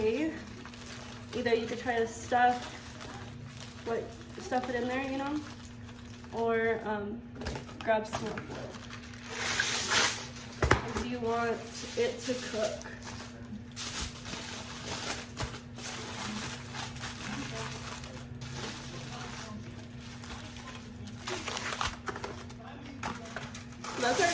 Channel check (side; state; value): both; identical; correlation 1.00